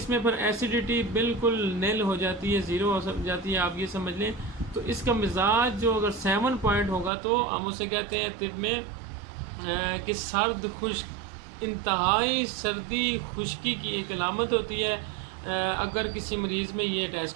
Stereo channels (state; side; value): drops out; left; at 7.1 s